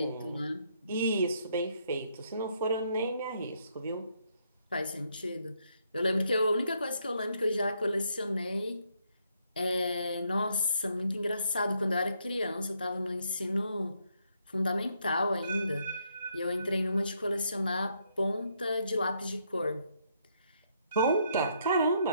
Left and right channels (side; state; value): both; inverted; correlation -0.74